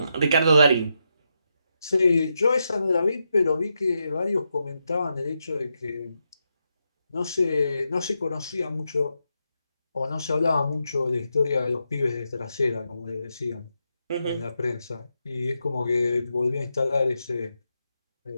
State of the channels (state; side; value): inverted; both; correlation -0.85